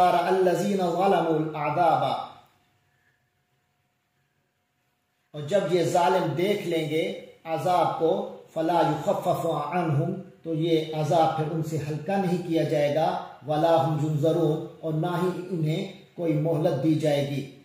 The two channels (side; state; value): both; identical; correlation 1.00